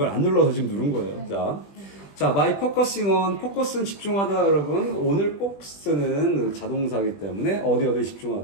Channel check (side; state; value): right; late; 20 ms